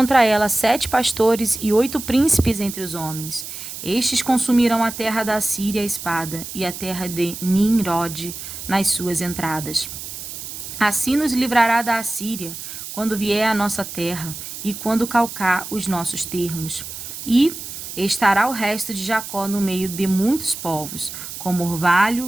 ela 7 pastores e 8 príncipes entre os homens. Estes consumirão a terra da Assíria à espada, e a terra de Nimrod nas suas entradas. Assim nos livrará da Assíria, quando vier à nossa terra, e quando calcar os nossos termos. E estará o resto de Jacó no meio de muitos povos, como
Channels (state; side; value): noise; right; hiss, 10 dB below the sound